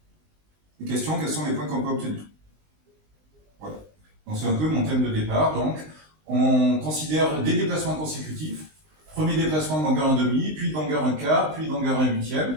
Les questions, quels sont les points qu'on peut obtenir? Voilà. Donc c'est un peu mon thème de départ. Donc, on considère des déplacements consécutifs. Premier déplacement de longueur 1 demi, puis de longueur 1 quart, puis de longueur 1 huitième.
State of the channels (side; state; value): left; late; 19 ms